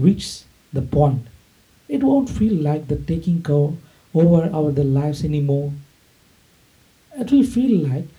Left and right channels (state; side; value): identical; both; correlation 1.00